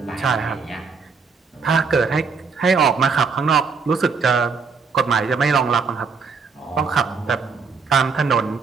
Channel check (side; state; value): left; quieter; 5.2 dB